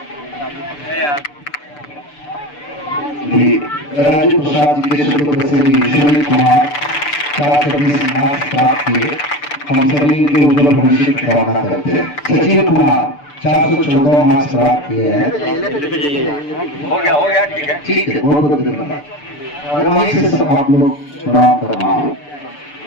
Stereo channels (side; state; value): right; late; 6.8 ms